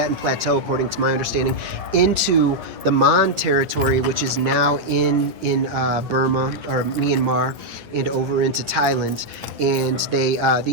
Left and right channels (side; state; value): left; late; 9.1 ms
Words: plateau, according to my understanding, into the Mon territory, which is now in Burma or Myanmar, and over into Thailand. And